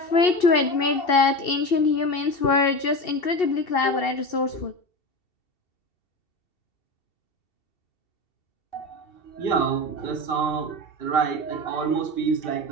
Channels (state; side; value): late; right; 2.7 ms